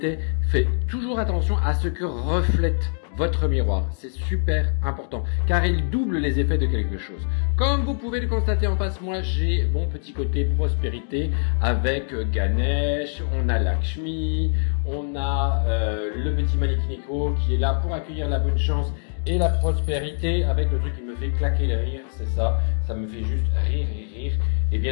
fait toujours attention à ce que reflète votre miroir. C'est super important, car il double les effets de quelque chose. Comme vous pouvez le constater en face, moi, j'ai mon petit côté prospérité avec Ganesh, on a Lakshmi, on a le petit Manikineko qui est là pour accueillir la bonne chance et la prospérité avec le truc qui me fait claquer le rire, c'est ça, ça me fait juste rire, et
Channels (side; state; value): right; silent; digital silence